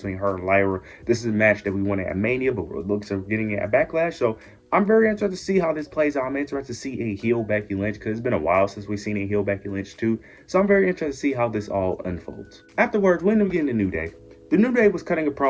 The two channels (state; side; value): identical; both; correlation 1.00